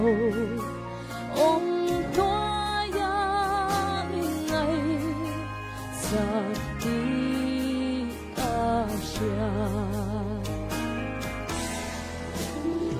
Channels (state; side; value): identical; both; correlation 1.00